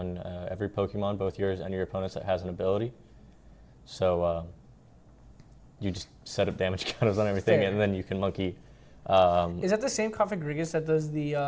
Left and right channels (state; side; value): identical; both; correlation 1.00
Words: every Pokemon, both yours and your opponent's, that has an ability. So you just set up damage counters on everything, and then you can monkey. Is that the same Cofagrigus that does the